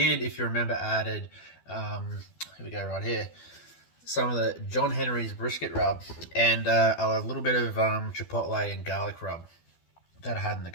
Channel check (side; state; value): right; late; 12 ms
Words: if you remember, added, here we go right here, some of the John Henry's brisket rub and a little bit of chipotle and garlic rub that I had in the